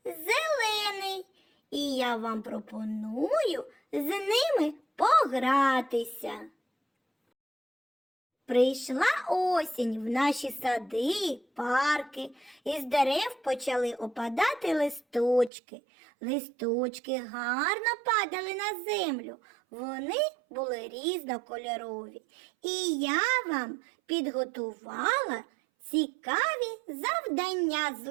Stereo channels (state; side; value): drops out; left; at 15.5 s